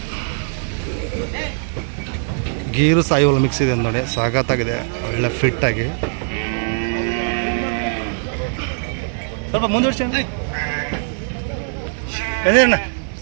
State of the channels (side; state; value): left; silent; 65 dB below the other